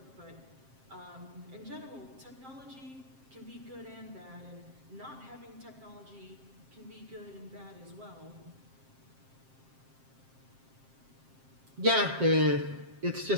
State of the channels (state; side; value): late; left; 7.5 ms